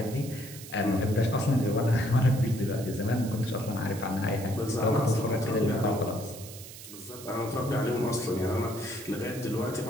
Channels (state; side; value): noise; right; hiss, 14 dB below the sound